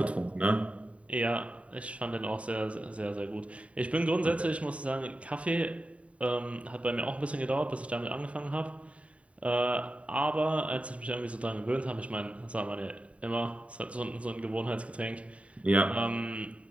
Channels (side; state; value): left; late; 0.065 ms